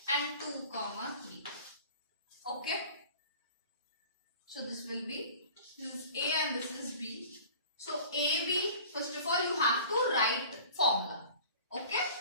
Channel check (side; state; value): both; inverted; correlation -0.45